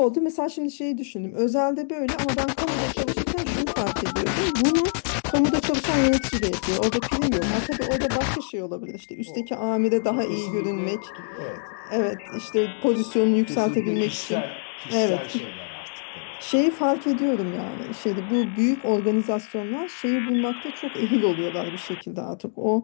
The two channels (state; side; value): silent; right; digital silence